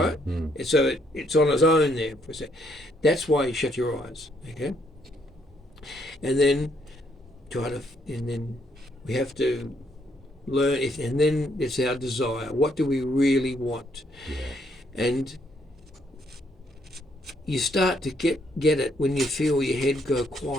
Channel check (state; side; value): normal; both; correlation 0.71